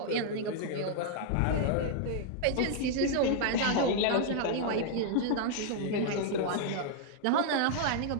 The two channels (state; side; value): different; both; correlation -0.01